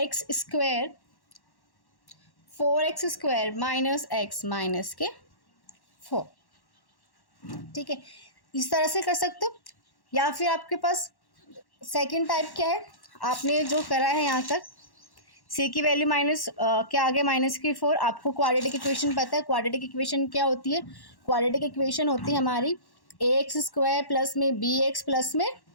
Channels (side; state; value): right; late; 1.1 ms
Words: square 4x square minus x minus के 4। ठीक है, इस तरह से कर सकते हो। या फिर आपके पास सेकंड टाइप क्या है, आपने जो करा है यहाँ तक c की वैल्यू माइनस क्या आ गया माइनस की 4। आपको क्वाड्रेटिक इक्वेशन पता है, क्वाड्रेटिक इक्वेशन क्या होती है, क्वाड्रेटिक इक्वेशन होती है हमारी ax स्क्वायर प्लस में bx प्लस में